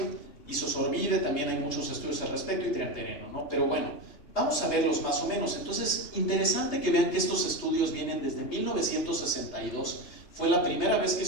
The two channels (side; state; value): right; late; 3.3 ms